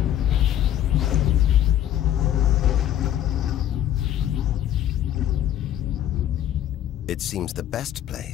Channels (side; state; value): right; quieter; 11.4 dB